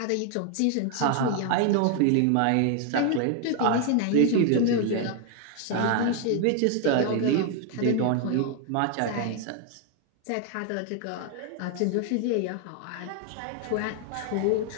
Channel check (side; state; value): both; different; correlation 0.00